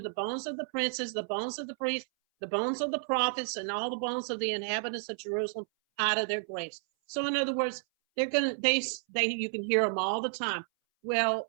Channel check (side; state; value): left; silent; 57 dB below the other